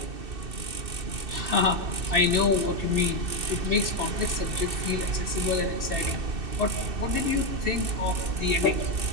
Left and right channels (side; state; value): left; late; 2.6 ms